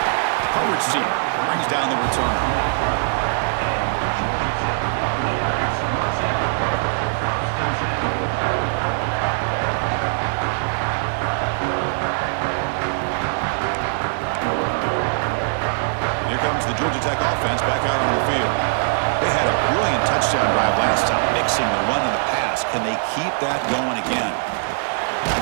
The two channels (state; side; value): silent; left; digital silence